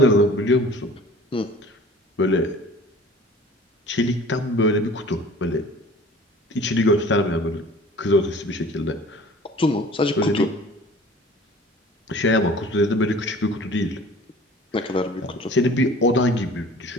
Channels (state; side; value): normal; both; correlation 0.46